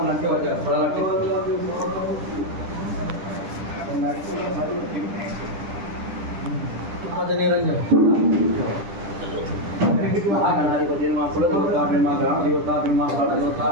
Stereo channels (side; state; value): left; late; 10 ms